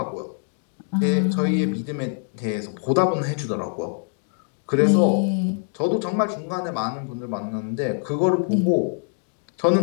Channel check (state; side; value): silent; right; 55 dB below the other